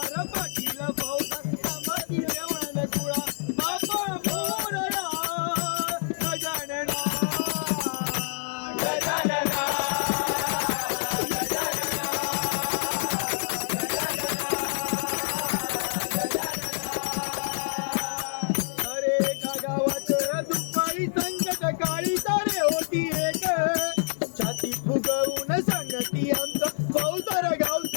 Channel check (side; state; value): right; silent; digital silence